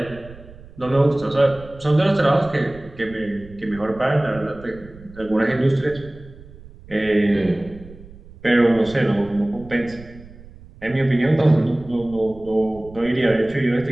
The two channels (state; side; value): noise; right; rumble, 19 dB below the sound